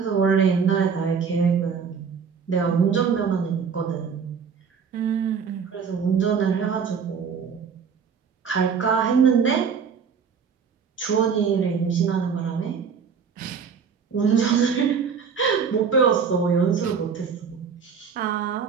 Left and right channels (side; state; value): left; quieter; 6.3 dB